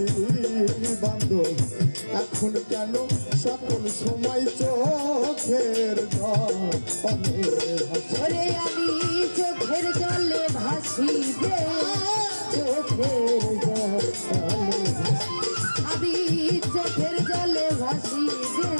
বান্ধব এখন কেন সকল সময় চোখের ওরে আমি চোখের জলে ভাসি রে চোখের জলে আমি চোখের জলে ভাসি রে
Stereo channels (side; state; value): both; inverted; correlation -1.00